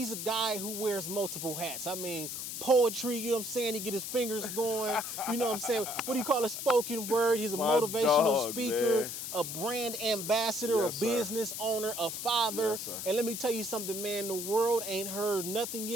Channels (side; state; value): left; noise; hiss, 6 dB below the sound